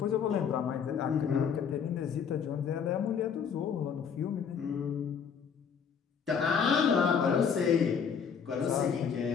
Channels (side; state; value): right; quieter; 6.9 dB